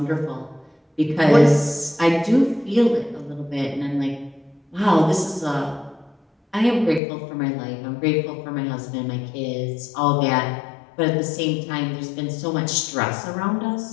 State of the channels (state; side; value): drops out; right; at 7.0 s